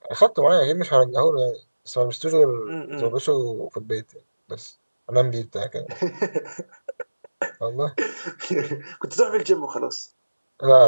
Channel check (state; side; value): inverted; both; correlation -1.00